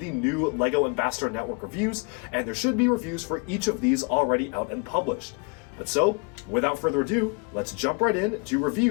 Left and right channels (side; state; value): right; quieter; 33.3 dB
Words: new LEGO Ambassador Network reviews, and there should be reviews for each of these already out and published. But so, without further ado, let's jump right in to